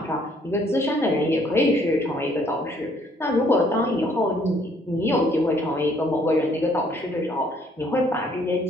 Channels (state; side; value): normal; both; correlation 0.64